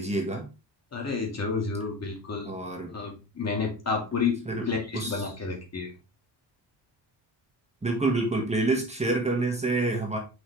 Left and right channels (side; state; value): both; normal; correlation 0.36